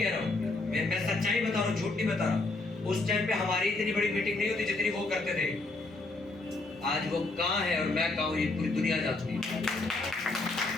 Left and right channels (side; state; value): right; quieter; 3.1 dB